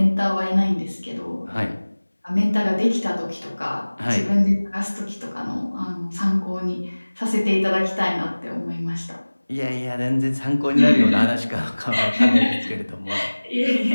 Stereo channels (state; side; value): inverted; both; correlation -1.00